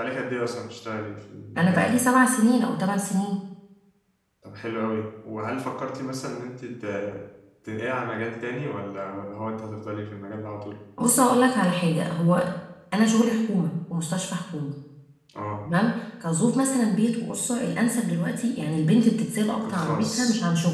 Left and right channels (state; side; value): identical; both; correlation 1.00